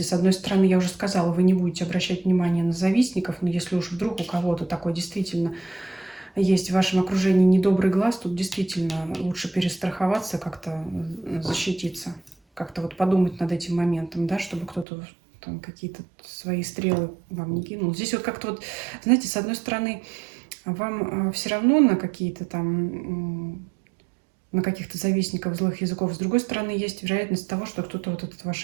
С одной стороны, я уже сказала, вы не будете обращать внимание на завистников, но если уж вдруг у кого-то такой действительно есть в вашем окружении недобрый глаз, тут действительно лучше перестраховаться, как-то защититься, как-то вот подумать над этим моментом, да, чтобы кто-то там какие-то свои стрелы вам не кинул. Здесь вот как-то вот, знаете, с одной стороны, вам все равно на какие-то там, на каких-то завистников злых языков. С другой стороны, есть вероятность того, что кто-то вот этот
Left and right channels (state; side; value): drops out; left; at 14.9 s